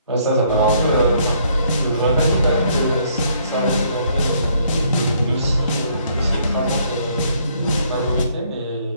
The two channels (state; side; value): inverted; both; correlation -0.66